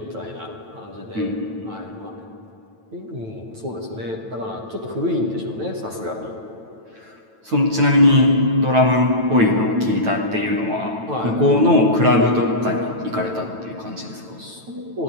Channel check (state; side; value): late; left; 9.1 ms